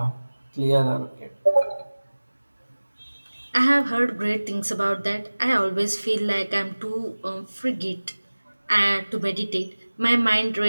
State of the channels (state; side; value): inverted; both; correlation -1.00